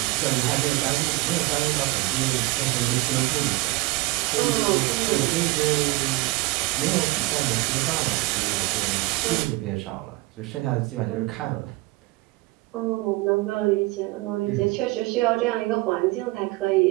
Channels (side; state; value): left; quieter; 21.0 dB